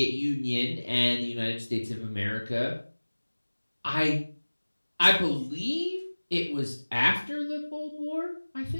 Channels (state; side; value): inverted; both; correlation -1.00